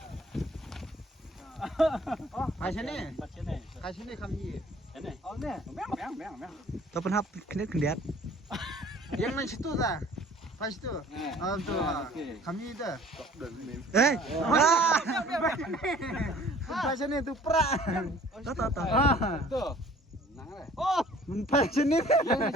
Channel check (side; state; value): both; normal; correlation 0.52